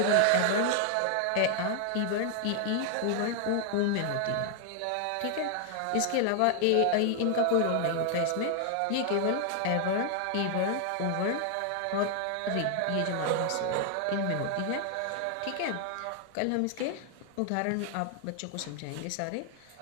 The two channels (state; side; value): different; both; correlation 0.00